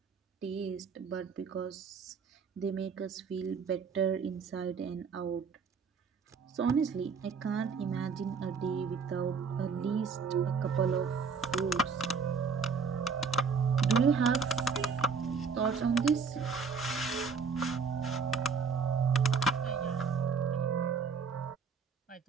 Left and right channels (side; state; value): left; quieter; 5.4 dB